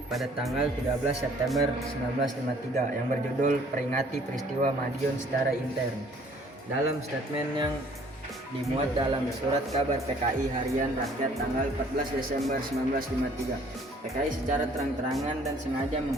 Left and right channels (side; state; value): both; normal; correlation 0.58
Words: pada tanggal 13 September 1953 yang berjudul Peringati Peristiwa Madiun Secara Intern. Dalam statement yang dimuat dalam surat kabar PKI Harian Rakyat tanggal 14 Desember 1953, PKI secara terang-terangan dan sengaja